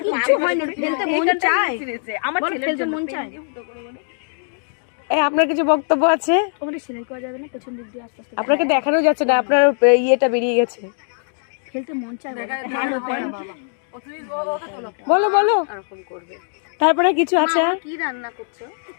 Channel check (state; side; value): silent; right; 65 dB below the other